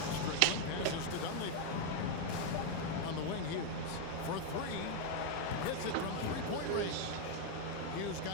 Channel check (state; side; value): different; both; correlation 0.00